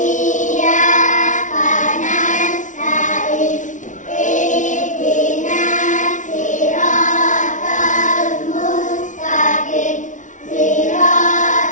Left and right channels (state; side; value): late; right; 0.37 ms